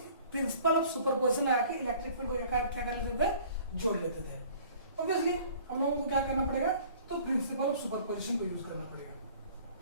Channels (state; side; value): inverted; both; correlation -0.51